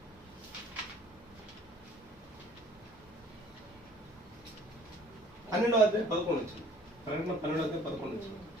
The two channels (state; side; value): normal; both; correlation 0.54